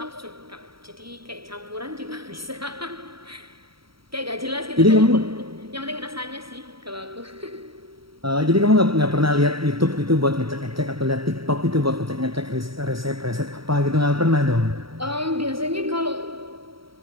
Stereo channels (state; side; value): late; left; 0.75 ms